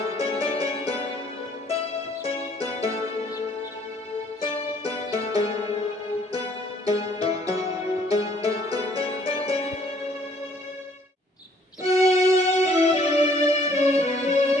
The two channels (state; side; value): normal; both; correlation 0.61